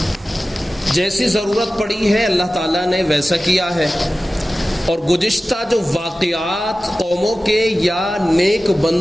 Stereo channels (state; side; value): normal; both; correlation 0.95